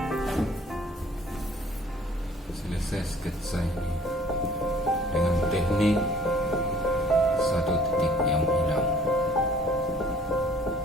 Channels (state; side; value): normal; both; correlation 0.54